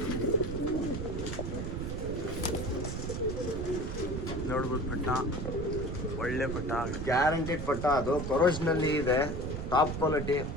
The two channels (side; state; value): right; noise; rumble, 4 dB below the sound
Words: ನೋಡ್ಬೋದು ಪಟ್ಟ, ಒಳ್ಳೆ ಪಟ್ಟ, ಗ್ಯಾರಂಟಿಡ್ ಪಟ್ಟ. ಅದು ಕೊರೋಜ್ನಲ್ಲಿ ಇದೆ, ಟಾಪ್ ಕ್ವಾಲಿಟಿ,